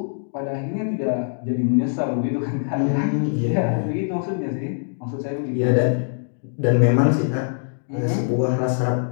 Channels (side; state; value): right; silent; digital silence